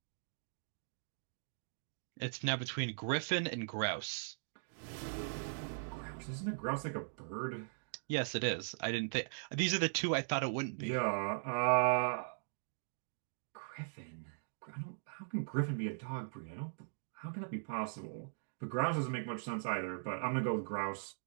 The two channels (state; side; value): silent; left; digital silence